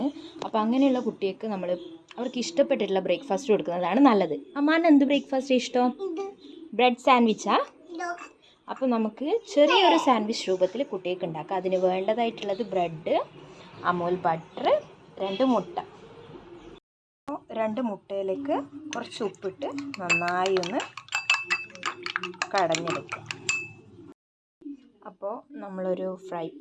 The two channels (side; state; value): both; identical; correlation 1.00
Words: അപ്പോൾ അങ്ങനെയുള്ള കുട്ടികൾക്ക് അവർക്ക് ഇഷ്ടപ്പെട്ടിട്ടുള്ള ബ്രേക്ക്ഫാസ്റ്റ് കൊടുക്കുന്നതാണ് നല്ലത്. അമ്മാന് എന്ത് ബ്രേക്ക്ഫാസ്റ്റ് ഇഷ്ടം? ബ്രെഡ് സാൻഡ്വിച്ചാ? അപ്പോൾ നമുക്ക് ചെറിയൊരു സാൻഡ്വിച്ച് രൂപത്തിൽ കുട്ടികൾക്ക് ഉണ്ടാക്കാം. അതിന് വേണ്ടതായിട്ടുള്ളത് ബ്രെഡ്, അമൂൽ ബട്ടർ, 2 മുട്ട. 2 മുട്ടയിലേക്ക് കുറച്ച് ഉപ്പിട്ട് നന്നായി ഒന്ന് കടഞ്ഞെടുക്കുക. അപ്പോൾ നമ്മളൊരു ഫ്രൈ